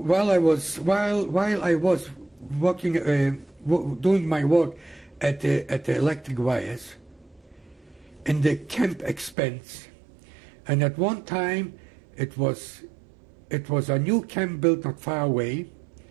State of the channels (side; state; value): left; drops out; at 9.3 s